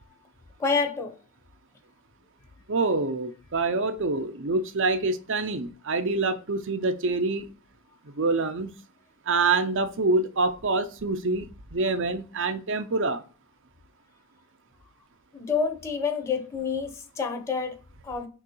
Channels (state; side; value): normal; both; correlation -0.10